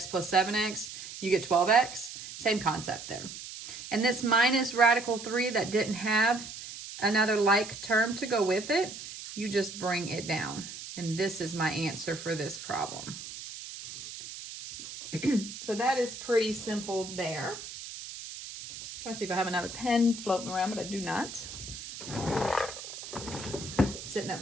plus 7x, you get 12x. Same concept there. And this minus radical 3 that didn't have another like term to go with it, you just bring it down. And this is my answer for this problem. So that is pretty simple there. Try to see if I have another pen floating around, but I do not. Sitting at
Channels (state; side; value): noise; right; hiss, 11 dB below the sound